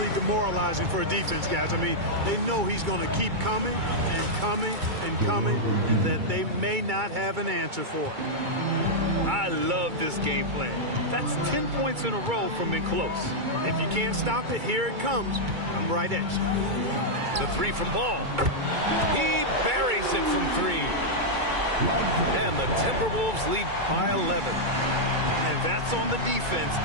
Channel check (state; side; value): late; left; 2.3 ms